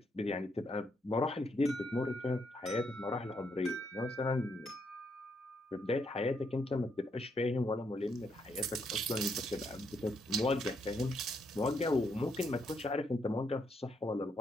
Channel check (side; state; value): both; normal; correlation 0.76